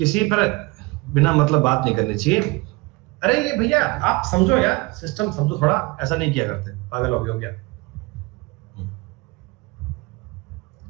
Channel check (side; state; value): left; quieter; 24.7 dB